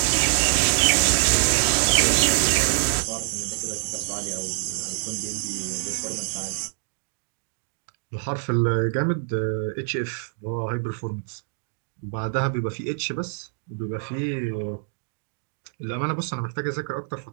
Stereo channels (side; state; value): left; silent; digital silence